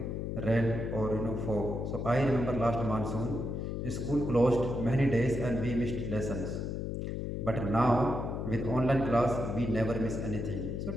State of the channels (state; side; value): noise; left; hum, 3 dB below the sound